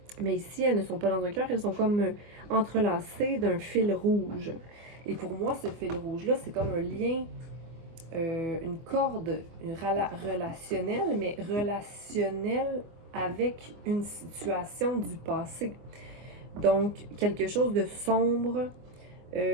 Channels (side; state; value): left; late; 24 ms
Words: Mais ici, elles ne sont pas dans un cœur, elles sont comme entrelacées d'un fil rouge. Et pour moi, ce fil rouge-là, c'est comme un lien, une corde relationnelle, mais relationnelle avec une situation du passé. Donc, quelque chose de sombre.